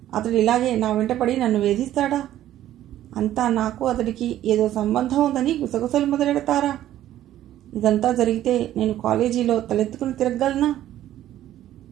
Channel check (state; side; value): quieter; left; 12.8 dB